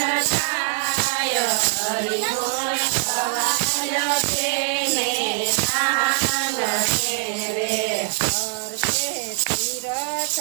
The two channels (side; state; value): left; silent; digital silence